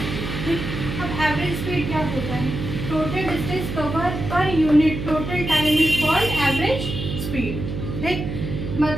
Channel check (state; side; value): noise; right; hum, 5 dB below the sound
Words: ठीक। अब एवरेज स्पीड क्या होता है? Total distance cover per unit total time is called average speed, ठीक।